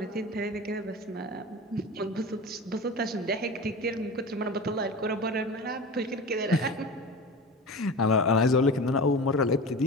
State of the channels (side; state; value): both; normal; correlation 0.32